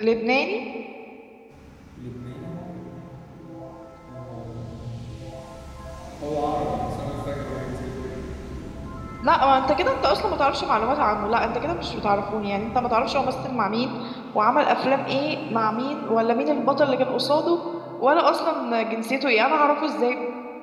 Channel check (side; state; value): both; identical; correlation 1.00